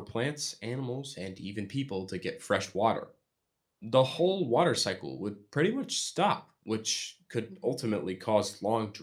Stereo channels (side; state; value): both; identical; correlation 1.00